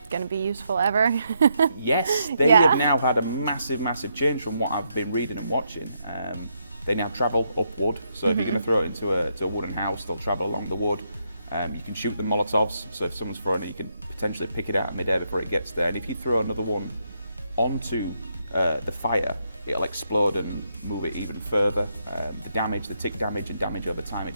going to be useful ever? Yes, they have now had a massive change from what I've been reading and watching. They now travel upward, so if you're going to throw it into a wooden house, they'll travel along the wood. You can shoot the Molotovs, so if someone's throwing it, you can potentially pick it out midair before it gets there. And if you throw another one onto the fire, it'll explode and move it even further. The tick damage and damage over time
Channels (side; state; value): both; inverted; correlation -0.78